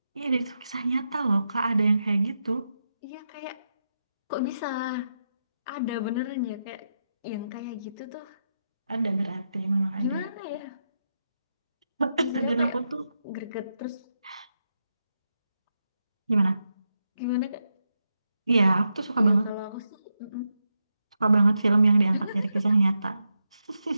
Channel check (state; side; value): inverted; both; correlation -0.86